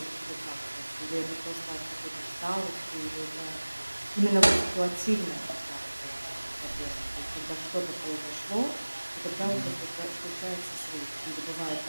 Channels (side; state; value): both; inverted; correlation -1.00